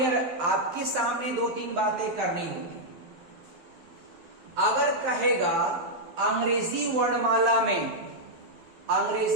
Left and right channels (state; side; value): late; left; 12 ms